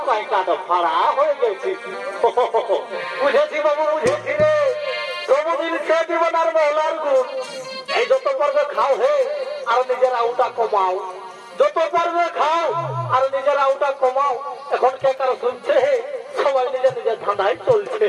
কাই কাটা ফাড়া হয়ে গেছিস বুঝেছি বাবু বুঝেছি রে সবুদিন সে জীবনার মহলার গুণ এই যত পারবে খাও হে আর নিজের আউটা কমাও যত পারবে খাও আর নিজের আউটা কমাও এখন কে কারো শুনছে হে সবাই নিজের নিজের ধাঁধায় চলছে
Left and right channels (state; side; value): identical; both; correlation 1.00